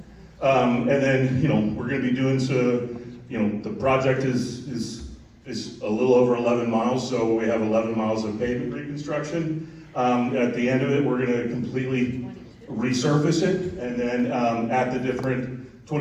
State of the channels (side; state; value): both; identical; correlation 1.00